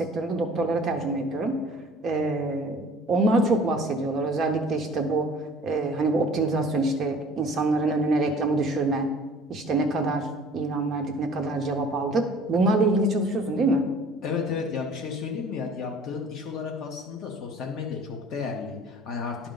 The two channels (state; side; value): normal; both; correlation 0.49